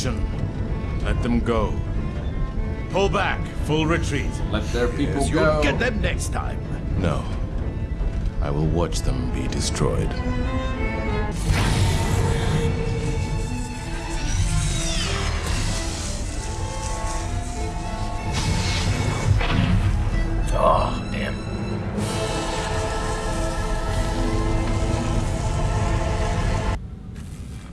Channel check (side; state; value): both; identical; correlation 1.00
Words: Let them go. Pull back. Full retreat. Let their people Yes, go. you'll get them next time. No. I will watch them be destroyed. Oh, damn.